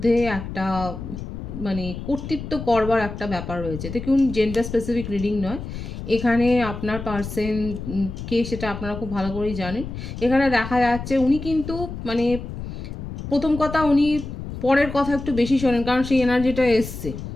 একটা মানে কর্তৃত্ব করবার একটা ব্যাপার রয়েছে। দেখুন, জেন্ডার স্পেসিফিক রিডিং নয় এখানে, আপনার পার্সন কে সেটা আপনারা খুব ভালো করেই জানেন। এখানে দেখা যাচ্ছে উনি কিন্তু মানে প্রথম কথা উনি পরের কথা একটু বেশি শোনেন, কারণ সেই এনার্জিটা এসছে।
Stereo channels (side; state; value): left; noise; rumble, 9 dB below the sound